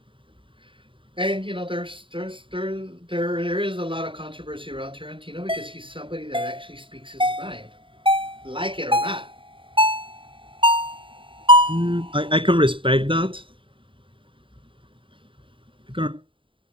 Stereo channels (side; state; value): left; late; 0.25 ms